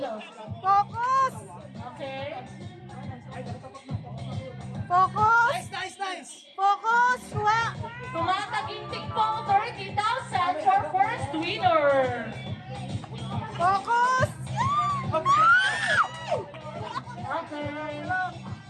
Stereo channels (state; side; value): identical; both; correlation 1.00